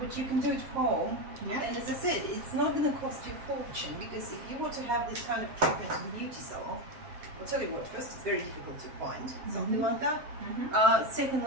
you can do it home. Yeah. And as I said, it's not going to cost you a fortune, because if you want to have this kind of treatment in beauty salon, I'll tell you what, first, it's very difficult to find something like that.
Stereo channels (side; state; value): left; late; 7.5 ms